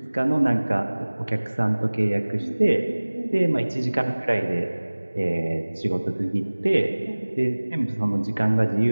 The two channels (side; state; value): both; inverted; correlation -1.00